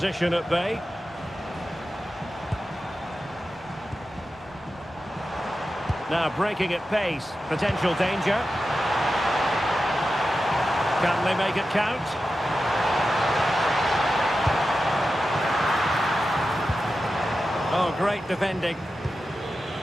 at bay. Now breaking at pace. Potential danger. Can they make it count? Oh, great defending.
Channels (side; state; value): both; normal; correlation 0.92